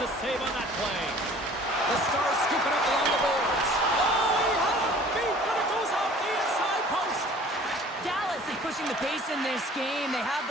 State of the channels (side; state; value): both; normal; correlation 0.49